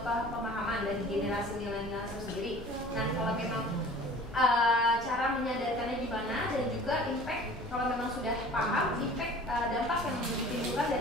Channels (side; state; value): both; normal; correlation 0.45